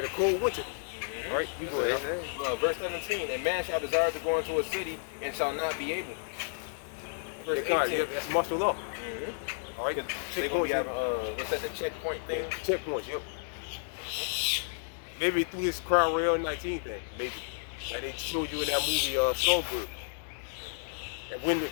a cold winter. All right, you go ahead. Verse 17. A man shall desire to go into a city and shall not be able. Verse 18. Yeah, that's martial law. All right, They gonna be having what's that? The checkpoint thing. Checkpoints, yep. Maybe through this Crown Rail 19 thing, maybe. Like they showed you in that movie, Songbird. And when the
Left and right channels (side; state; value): right; silent; digital silence